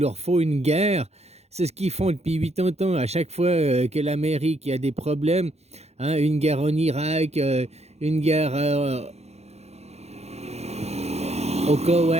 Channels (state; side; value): late; left; 0.31 ms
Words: faut une guerre. C'est ce qu'ils font depuis 80 ans. À chaque fois que l'Amérique a des problèmes, hein, une guerre en Irak, une guerre au